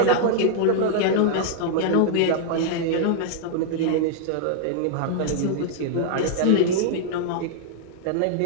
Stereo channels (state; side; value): different; both; correlation -0.01